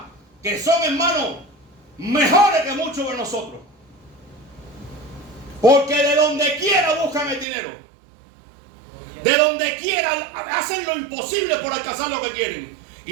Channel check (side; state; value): left; drops out; at 7.5 s